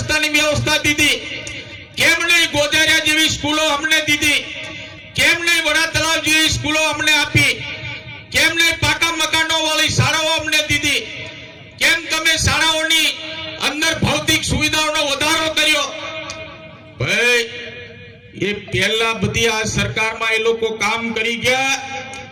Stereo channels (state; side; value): identical; both; correlation 1.00